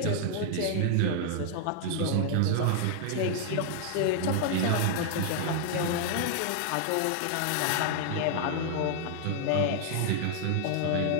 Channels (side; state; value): both; different; correlation -0.01